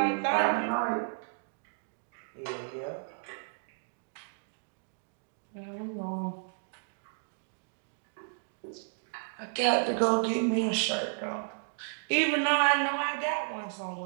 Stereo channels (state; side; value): silent; left; digital silence